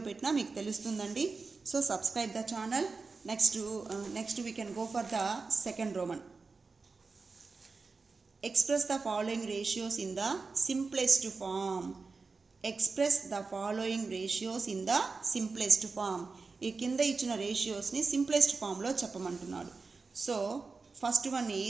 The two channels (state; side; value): quieter; left; 4.3 dB